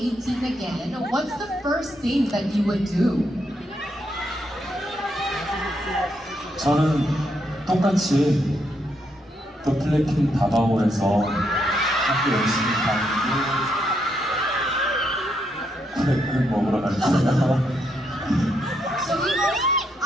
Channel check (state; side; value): normal; both; correlation 0.78